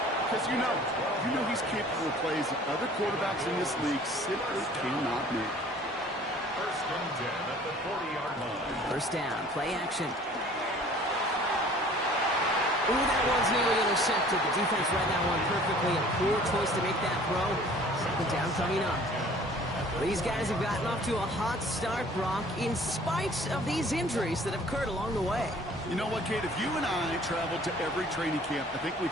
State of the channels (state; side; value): normal; both; correlation 0.51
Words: because you know he's capable of plays that other quarterbacks in this league simply cannot make. First and 10 at the 40-yard line. First down, play action. Ooh, that one's nearly intercepted. The defense read that one perfectly. A poor choice to make that throw. Second down coming up. These guys have gotten off to a hot start, Brock, in spite of these injuries that have occurred along the way. You know what, Kate? If you and I traveled to every training camp, I think we'd